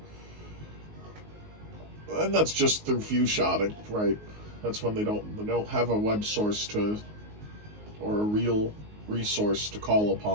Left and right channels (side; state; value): left; late; 19 ms